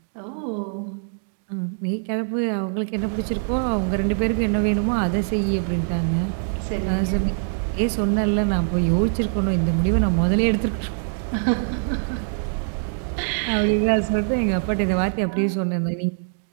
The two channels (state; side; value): silent; left; digital silence